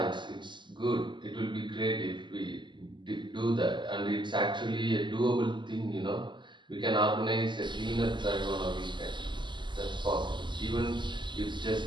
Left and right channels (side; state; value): left; late; 0.22 ms